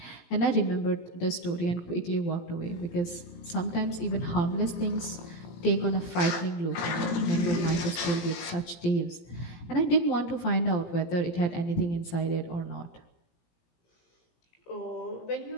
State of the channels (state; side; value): late; right; 17 ms